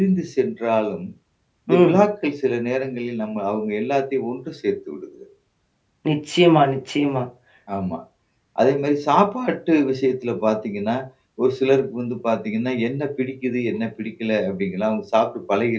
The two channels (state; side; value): identical; both; correlation 1.00